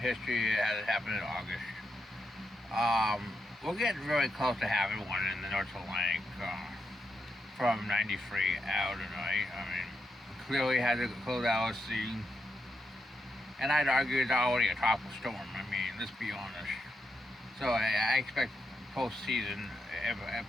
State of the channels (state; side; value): normal; both; correlation 0.83